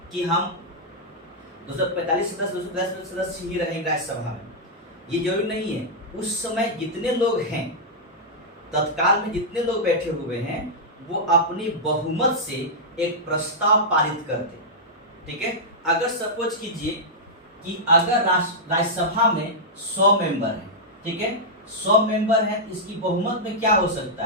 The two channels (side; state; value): both; normal; correlation -0.08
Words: कि हम 245 सदस्य 210 सदस्य ही रहेंगे राज्यसभा में, ये जरूरी नहीं है। उस समय जितने लोग हैं, तत्काल में जितने लोग बैठे हुए हैं, वो अपनी बहुमत से एक प्रस्ताव पारित करते, ठीक है। अगर सपोज कीजिए कि अगर राज्यसभा में 100 मेंबर हैं, ठीक है, 100 मेंबर हैं, इसकी बहुमत में क्या हो